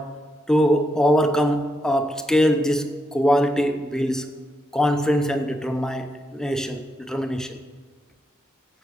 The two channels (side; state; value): both; normal; correlation 0.82